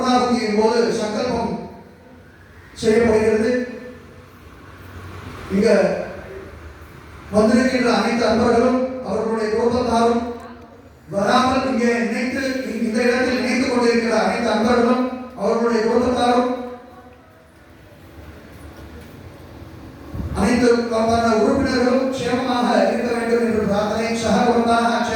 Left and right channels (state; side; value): identical; both; correlation 1.00